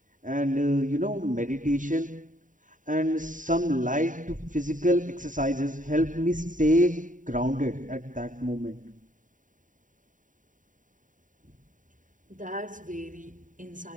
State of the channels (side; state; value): left; late; 0.38 ms